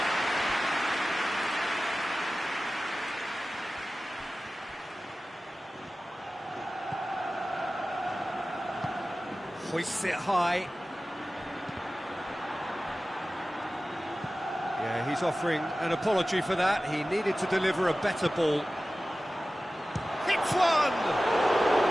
Hoists it high. Yeah, he's offering an apology for that. He needed to deliver a better ball. Hits one!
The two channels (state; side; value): normal; both; correlation 0.96